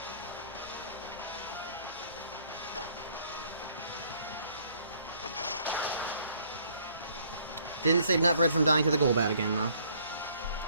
Didn't save Nutbread from dying to the Golbat again, though.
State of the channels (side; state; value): both; inverted; correlation -0.61